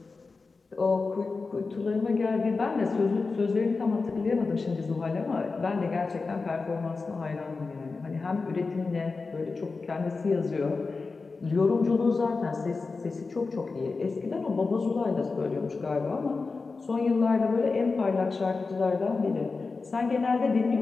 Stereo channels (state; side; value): quieter; right; 4.2 dB